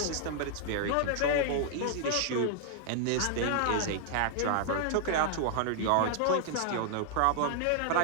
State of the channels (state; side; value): different; both; correlation 0.00